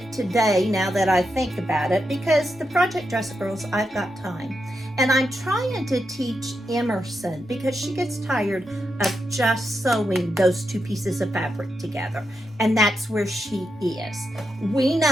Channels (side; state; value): both; normal; correlation 0.85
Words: today now that I think about it, because the Project Dress Girls, I've got time. And I'm trying to teach Emerson, because she gets tired of just sewing those two pieces of fabric together. And that's where she is. We